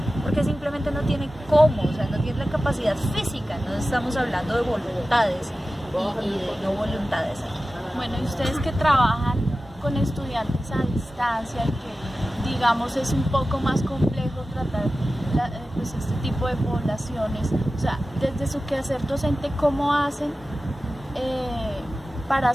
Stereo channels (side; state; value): both; normal; correlation 0.95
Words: Porque simplemente no tiene cómo, o sea, no tiene la capacidad física, no estamos hablando de voluntades y de no voluntades. Bueno, y ustedes que trabajan con estudiantes a distancia y que digamos es un poco más complejo tratar pues este tipo de poblaciones, o sea, desde su quehacer docente, ¿cómo hacen para